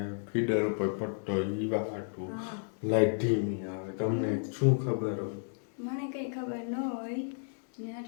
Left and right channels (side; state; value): right; silent; 56 dB below the other